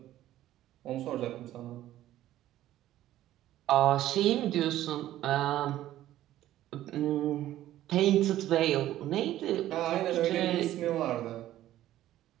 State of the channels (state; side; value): quieter; left; 13.7 dB